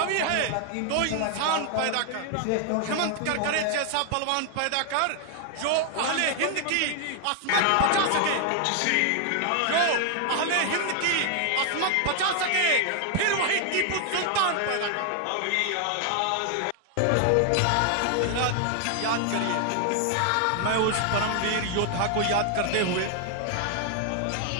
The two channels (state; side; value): different; both; correlation 0.00